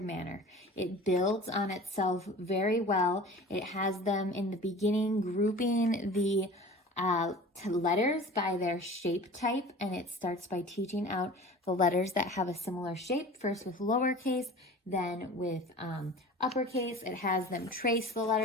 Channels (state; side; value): normal; both; correlation 0.40